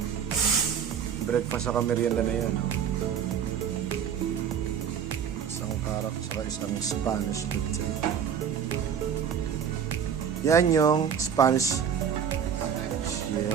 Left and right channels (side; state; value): left; quieter; 7.9 dB